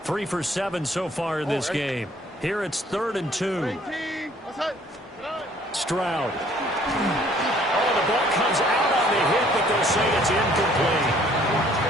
3 for 7 so far in this game. Here it's 3rd and 2. Stroud. Oh, the ball comes out on the hit, but they'll say it's incomplete.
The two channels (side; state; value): both; normal; correlation 0.59